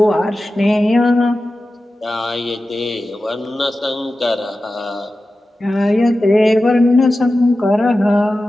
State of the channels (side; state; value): both; normal; correlation 0.94